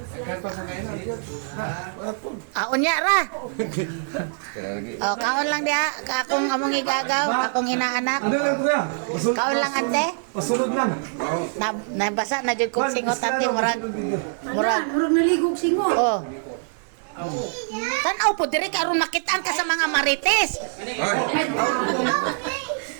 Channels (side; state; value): left; silent; digital silence